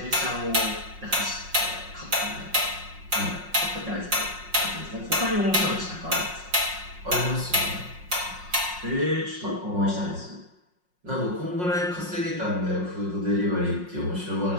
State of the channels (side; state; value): left; late; 5.5 ms